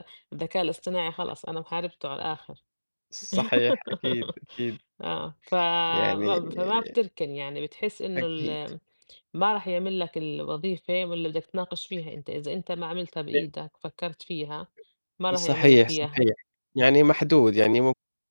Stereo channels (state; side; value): inverted; both; correlation -1.00